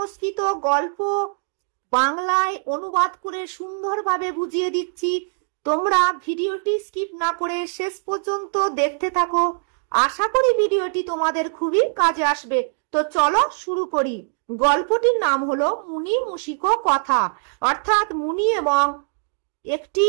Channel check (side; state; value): left; silent; digital silence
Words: গল্প বাংলায় অনুবাদ করে সুন্দরভাবে বুঝিয়ে দিচ্ছি। তোমরা ভিডিওটি স্কিপ না করে শেষ পর্যন্ত দেখতে থাকো। আশা করি ভিডিওটি তোমাদের খুবই কাজে আসবে। তো চলো শুরু করি। গল্পটির নাম হলো মুনি মুশিক কথা, অর্থাৎ মুনি এবং একটি